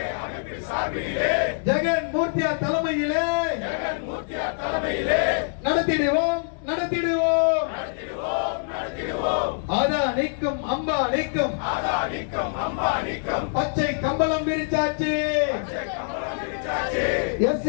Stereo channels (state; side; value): silent; right; 62 dB below the other